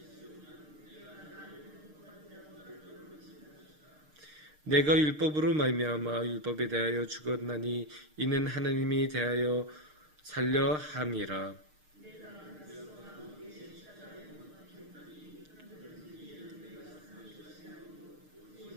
내가 율법으로 말미암아 율법에 대하여 죽었나니 이는 하나님이 대하여 살려 함이라.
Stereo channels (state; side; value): late; left; 6.6 ms